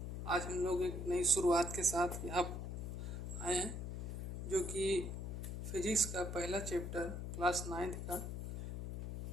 आज हम लोग एक नई शुरुआत के साथ यहाँ आए हैं, जो कि फिजिक्स का पहला चैप्टर क्लास 9th का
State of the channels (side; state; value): left; noise; hum, 5 dB below the sound